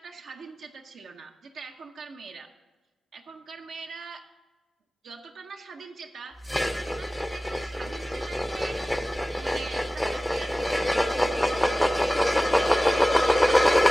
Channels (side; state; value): both; normal; correlation 0.97